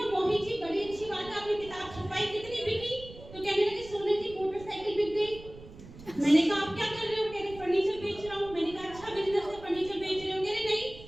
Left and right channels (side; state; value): right; noise; rumble, 17 dB below the sound